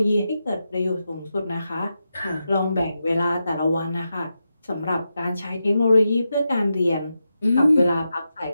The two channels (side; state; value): both; inverted; correlation -0.89